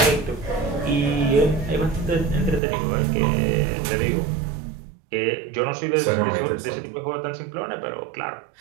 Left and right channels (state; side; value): drops out; left; at 2.6 s